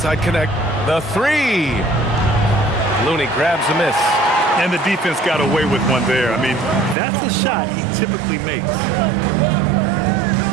connect. The three. Looney grabs a miss. And the defense got away with one there. I mean, that's a shot he typically makes.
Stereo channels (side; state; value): left; drops out; at 7.0 s